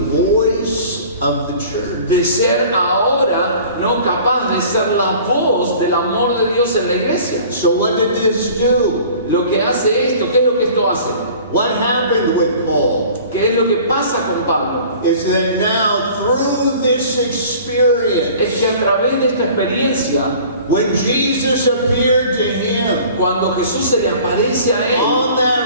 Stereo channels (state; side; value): inverted; both; correlation -0.47